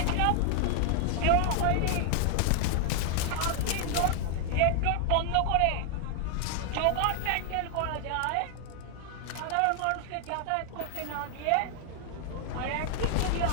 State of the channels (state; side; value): different; both; correlation 0.00